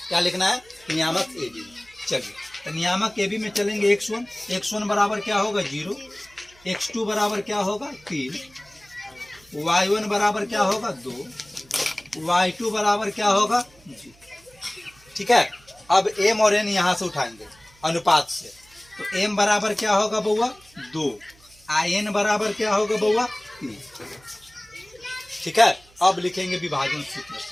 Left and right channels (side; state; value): right; noise; hum, 28 dB below the sound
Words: क्या लिखना है, नियामक ए बी। चलिए तो नियामक ए बी में चलेंगे x1, x1 बराबर क्या होगा 0, x2 बराबर क्या होगा 3, y1 बराबर क्या होगा 2, y2 बराबर क्या होगा 0। ठीक है, अब m और n यहाँ से उठाएंगे अनुपात से, तो m बराबर क्या होगा बउआ 2, n बराबर क्या होगा बउआ 3। ठीक है, अब लिखेंगे विभाजन सूत्र